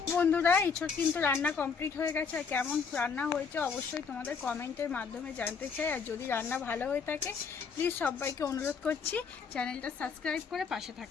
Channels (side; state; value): right; quieter; 5.8 dB